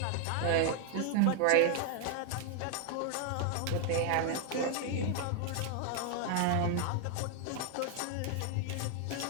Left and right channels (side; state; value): both; different; correlation 0.00